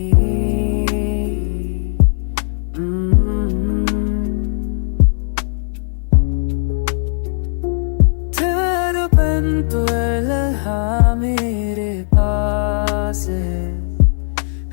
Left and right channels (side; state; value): right; silent; 57 dB below the other